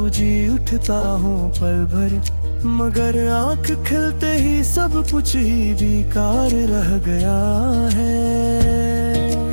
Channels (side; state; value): both; inverted; correlation -1.00